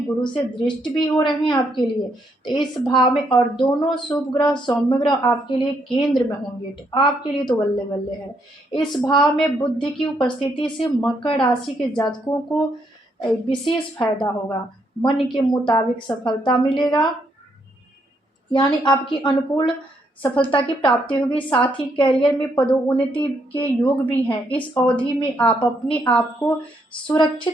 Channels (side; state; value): both; normal; correlation 0.75